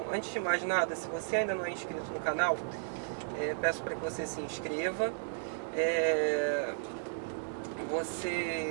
antes de mais nada, se você ainda não é inscrito no canal, peço para que você se inscreva.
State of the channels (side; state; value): left; silent; digital silence